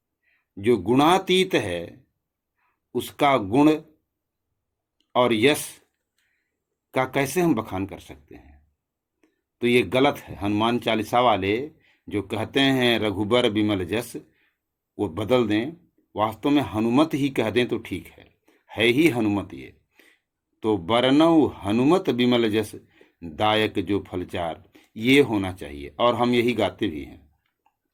जो गुणातीत है उसका गुण और यश का कैसे हम बखान कर सकते हैं? तो ये गलत है। हनुमान चालीसा वाले जो कहते हैं रघुबर विमल जस, वो बदल दें, वास्तव में हनुमत ही कह दें तो ठीक है ही हनुमत। ये तो बरनऊ हनुमत विमल जस, दायक जो फलचार, ये होना चाहिए। और हम यही गाते भी हैं।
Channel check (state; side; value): identical; both; correlation 1.00